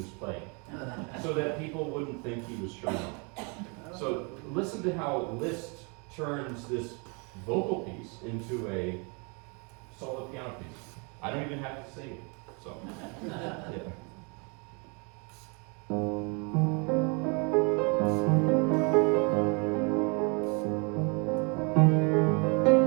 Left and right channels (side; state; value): left; quieter; 33.4 dB